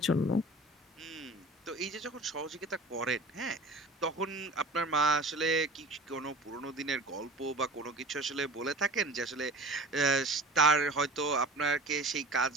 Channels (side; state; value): both; normal; correlation 0.41